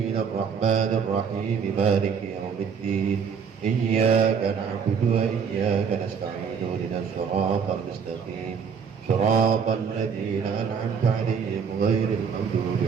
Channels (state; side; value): quieter; left; 6.5 dB